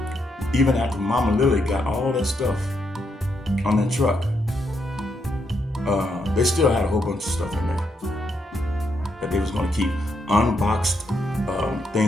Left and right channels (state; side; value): normal; both; correlation 0.79